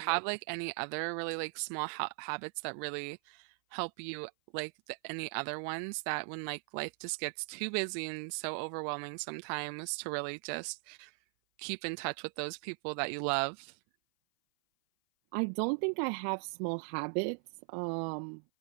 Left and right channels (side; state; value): left; silent; 52 dB below the other